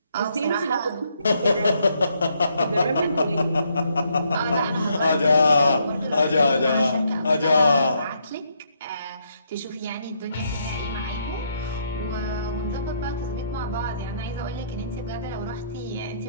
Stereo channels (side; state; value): both; inverted; correlation -0.73